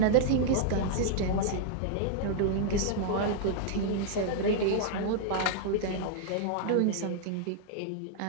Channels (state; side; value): different; both; correlation -0.01